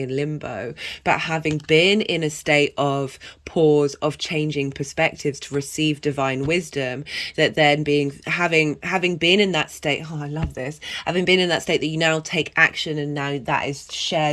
limbo, but having been in a state of pause, of changing perspectives to receive divine wisdom, that then having been in that state, oh, I love this, having been in that state that you now take action, and now that is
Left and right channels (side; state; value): both; identical; correlation 1.00